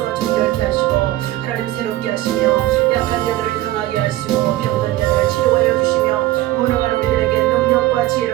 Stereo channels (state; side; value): quieter; left; 15.9 dB